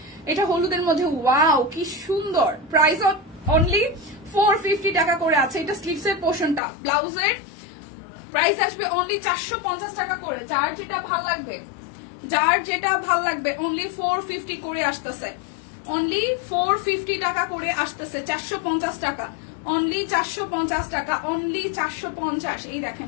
এটা হলুদের মধ্যে, ওয়াও কি সুন্দর। প্রাইস অনলি 450 টাকা করে আছে। এটা স্লিভস এর পোর্শনটা, ব্লাউজের প্রাইস আসবে অনলি 450 টাকা করে। যার যেটা ভাল লাগবে অনলি 450 করে আসতেছে, অনলি 450 টাকা করে আসতেছে, 450 টাকা, অনলি 450 টাকা, অনলি 450। এই দেখেন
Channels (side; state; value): right; drops out; at 6.6 s